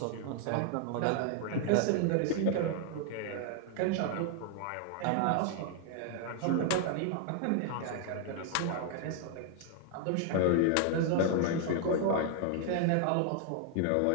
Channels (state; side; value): different; both; correlation 0.00